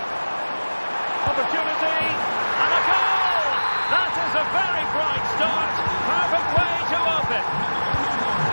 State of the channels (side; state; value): both; inverted; correlation -1.00